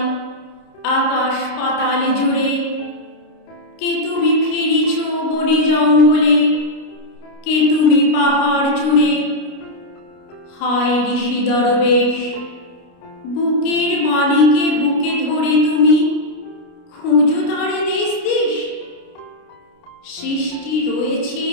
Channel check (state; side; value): late; right; 29 ms